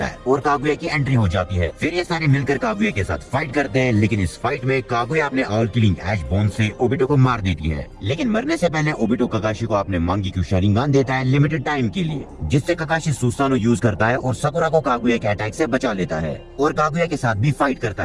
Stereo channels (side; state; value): both; identical; correlation 1.00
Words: है और कागुया की एंट्री हो जाती है। फिर ये सारे मिलकर कागुया के साथ फाइट करते हैं, लेकिन इस फाइट में कागुया अपने ऑल किलिंग ऐश बोन से ओबिटो को मार देती है। लेकिन मरने से पहले ओबिटो काकाशी को अपने मांगीक्यू शारिंगान देता है लिमिटेड टाइम के लिए, जिससे काकाशी सुसानो यूज करता है और साकुरा को कागुया के अटैक से बचा लेता है और कागुया के साथ भी फाइट करता